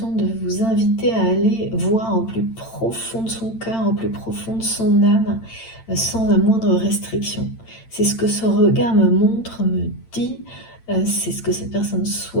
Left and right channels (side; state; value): right; late; 8.9 ms